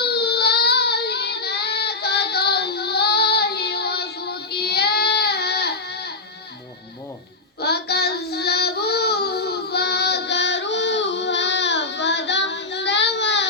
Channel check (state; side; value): quieter; right; 3.6 dB